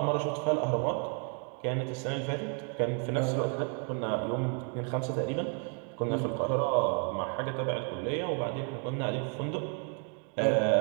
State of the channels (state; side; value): quieter; left; 39.9 dB